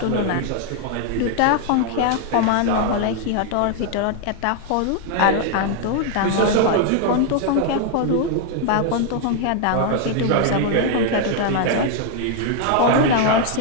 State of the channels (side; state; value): both; different; correlation 0.00